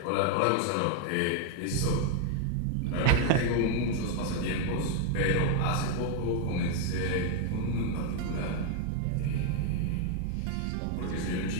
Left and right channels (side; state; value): both; different; correlation 0.00